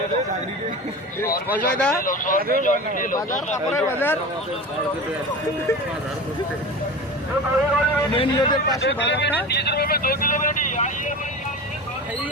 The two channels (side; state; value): both; normal; correlation 0.31